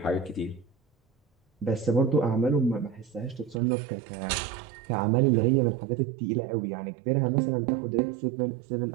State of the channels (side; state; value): left; drops out; at 3.6 s